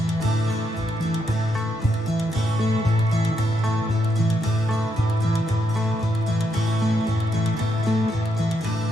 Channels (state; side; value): normal; both; correlation 0.78